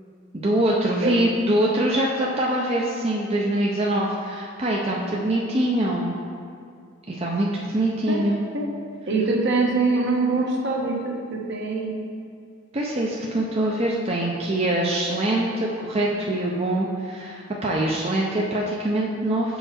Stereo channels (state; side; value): normal; both; correlation 0.51